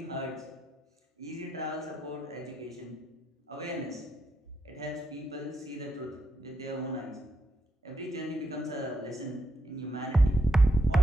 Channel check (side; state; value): both; normal; correlation 0.82